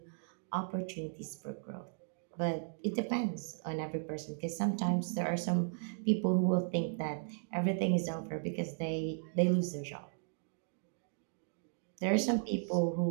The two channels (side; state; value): left; silent; digital silence